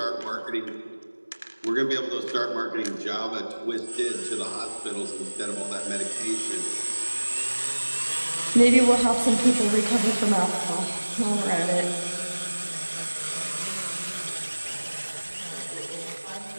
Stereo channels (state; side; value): inverted; both; correlation -1.00